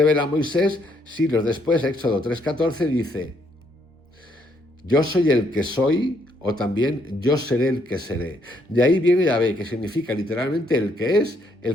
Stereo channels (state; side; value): normal; both; correlation 0.72